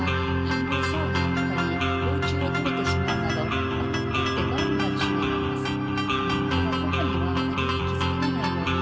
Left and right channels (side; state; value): both; identical; correlation 1.00